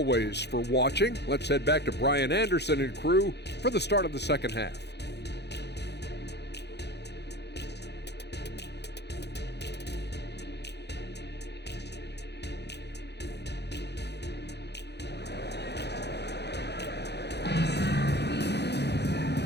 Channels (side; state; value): right; late; 0.49 ms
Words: for watching. Let's head back to Brian Anderson and crew for the start of the second half.